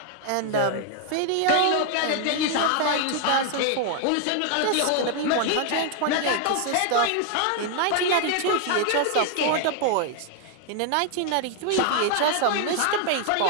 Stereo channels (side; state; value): both; different; correlation 0.00